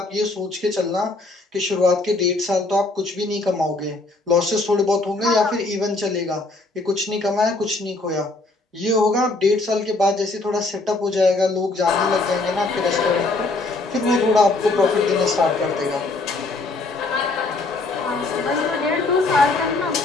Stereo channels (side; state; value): right; quieter; 3.3 dB